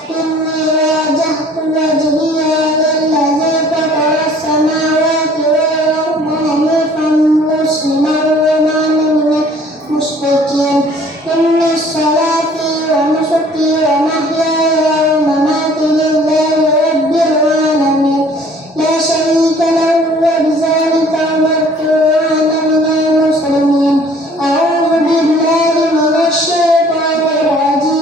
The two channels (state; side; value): normal; both; correlation 0.54